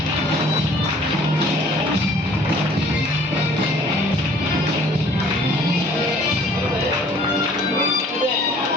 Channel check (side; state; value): both; normal; correlation 0.54